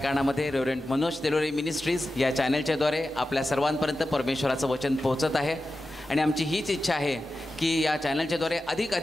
रेव्हरंड मनोज तेलोरे मिनिस्ट्रीज या चॅनलच्या द्वारे आपल्या सर्वांपर्यंत परमेश्वराचं वचन पोहोचत आहे आणि आमची हीच इच्छा आहे की या चॅनलच्या द्वारे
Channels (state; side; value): normal; both; correlation 0.92